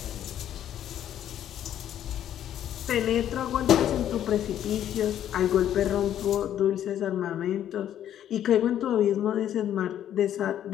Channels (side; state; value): right; quieter; 10.8 dB